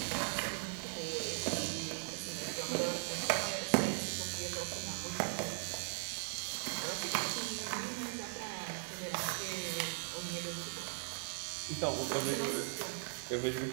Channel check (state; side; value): silent; left; 52 dB below the other